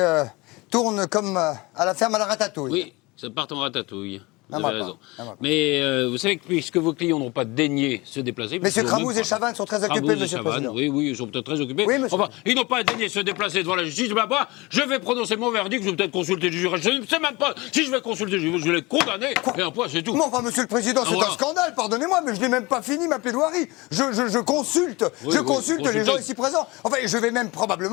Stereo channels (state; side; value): quieter; right; 23.6 dB